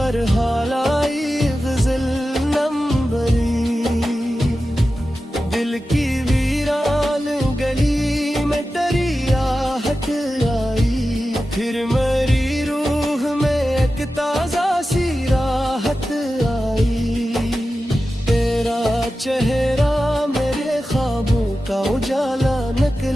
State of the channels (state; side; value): normal; both; correlation 0.93